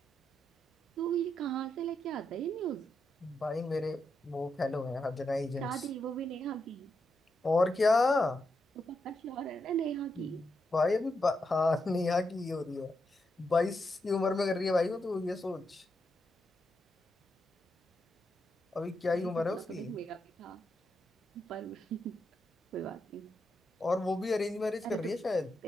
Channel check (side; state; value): both; normal; correlation 0.84